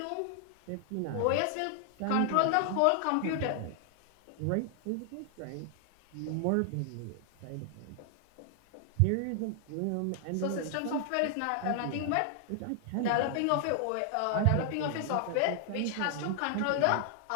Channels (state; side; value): different; both; correlation 0.00